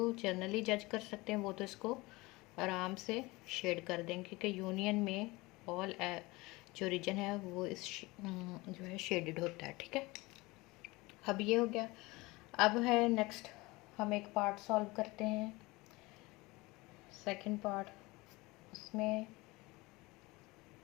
जनरली जज कर सकते हैं वो तो इसको आराम से शेड कर दें, क्योंकि यूनियन में ऑल जो रीजन है वो इस जो है शेडेड होता है। ठीक है, अब ये हो गया। अब है नेक्स्ट, हम एक पार्ट सॉल्व करते हैं, सेकंड पार्ट। उसमें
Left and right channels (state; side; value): quieter; right; 22.5 dB